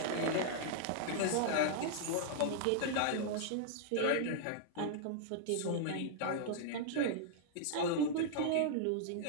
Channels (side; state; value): both; different; correlation -0.01